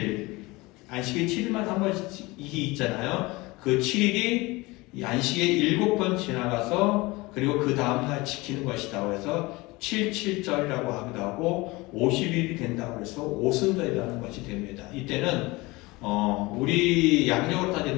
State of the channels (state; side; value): quieter; right; 22.5 dB